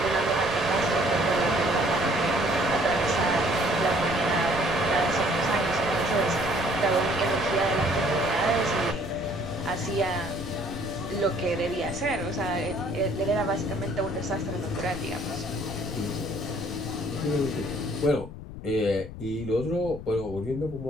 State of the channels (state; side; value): noise; left; rumble, 11 dB below the sound